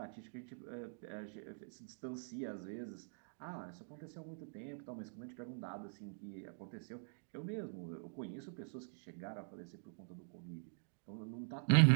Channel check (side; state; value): left; silent; digital silence